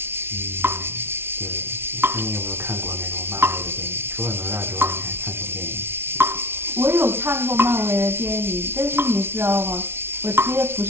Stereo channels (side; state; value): left; late; 0.12 ms